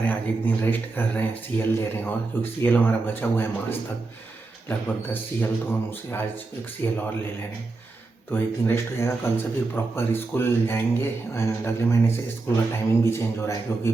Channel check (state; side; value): quieter; left; 3.6 dB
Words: हैं। आज एक दिन रेस्ट कर रहे हैं, सीएल ले रहे हैं और क्योंकि सीएल हमारा बचा हुआ है मार्च तक लगभग 10 सीएल, तो हम उसे आज एक सीएल और ले रहे हैं। तो एक दिन रेस्ट हो जाएगा, कल से फिर प्रॉपर स्कूल जाएंगे एंड अगले महीने से स्कूल का टाइमिंग भी चेंज हो रहा है क्योंकि